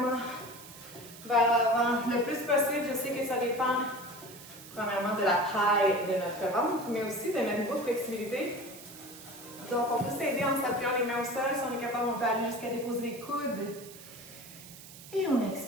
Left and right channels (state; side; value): noise; right; hiss, 17 dB below the sound